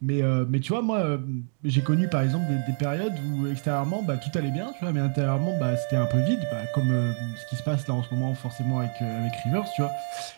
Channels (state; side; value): silent; left; digital silence